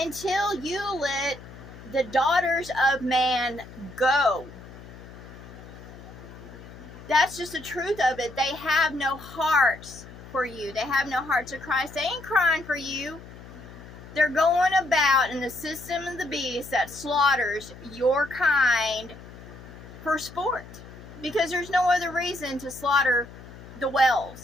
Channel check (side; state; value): left; noise; hum, 17 dB below the sound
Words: you let the daughters of man go. That's just the truth of it. They have no hearts for you. They have no hearts of Christ. They ain't crying for you. They're going about in the system of the beast that slaughters your kind for sport. Because there's no other reason to slaughter the